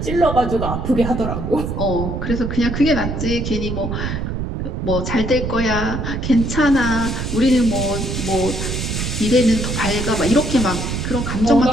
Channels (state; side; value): noise; right; rumble, 3 dB below the sound